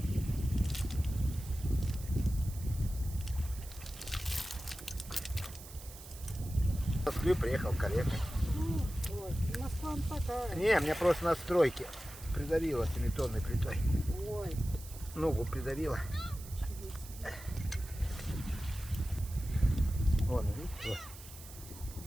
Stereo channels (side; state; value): right; noise; hiss, 16 dB below the sound